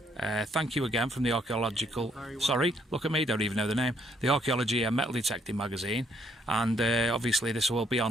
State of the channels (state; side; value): normal; both; correlation 0.69